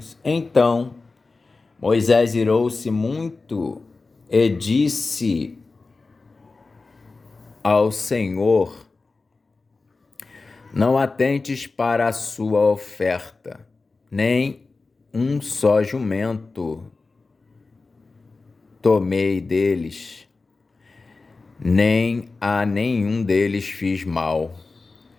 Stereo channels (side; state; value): right; quieter; 3.8 dB